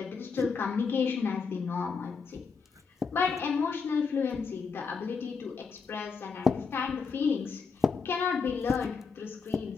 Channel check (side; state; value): right; quieter; 5.3 dB